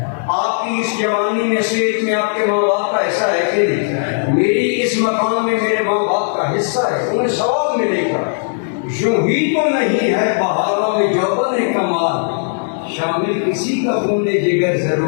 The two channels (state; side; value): silent; right; digital silence